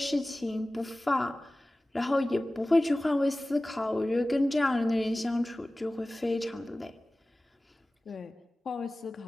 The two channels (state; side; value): normal; both; correlation 0.97